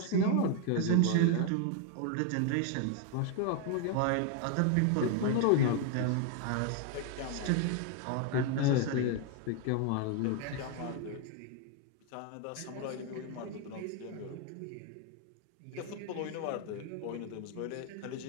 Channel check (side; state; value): both; different; correlation 0.01